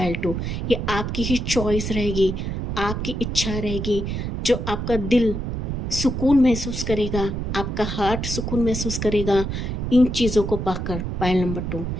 2, ये आपकी ही चॉइस रहेगी, आपकी इच्छा रहेगी, जो आपका दिल सुकून महसूस करेगा, आपका हार्ट सुकून महसूस करेगा इन चीज़ों को पाकर। पाइल नंबर 2,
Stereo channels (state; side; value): noise; right; rumble, 3 dB below the sound